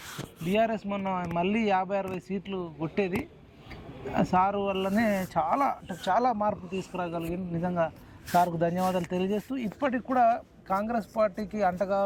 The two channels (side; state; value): both; identical; correlation 1.00